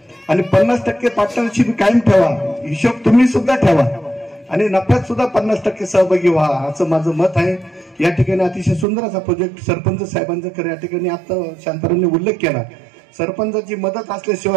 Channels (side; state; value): left; drops out; at 8.8 s